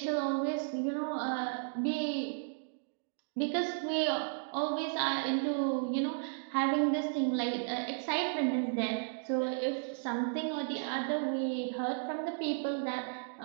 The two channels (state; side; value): silent; left; digital silence